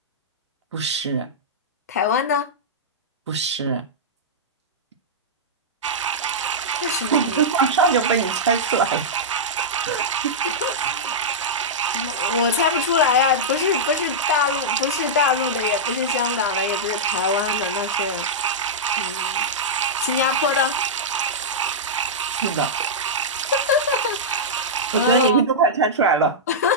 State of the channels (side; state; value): both; normal; correlation -0.10